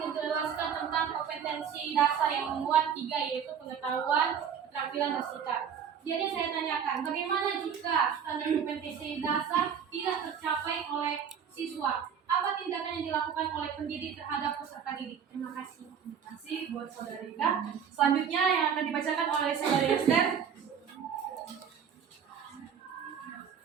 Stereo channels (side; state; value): left; quieter; 7.7 dB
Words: tentang kompetensi dasar yang memuat 3, yaitu pengetahuan, keterampilan, dan sikap. Jadi saya tanyakan, bagaimana jika standar kompetensi dasar tidak tercapai oleh siswa? Apa tindakan yang dilakukan oleh pendidik terhadap peserta didik? Terima kasih. Terima kasih buat Saudari Ika. Selanjutnya yang akan dibacakan oleh Saudari Esther.